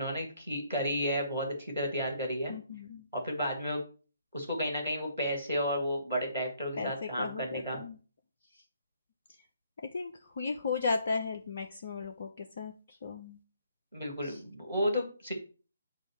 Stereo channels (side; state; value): both; inverted; correlation -0.68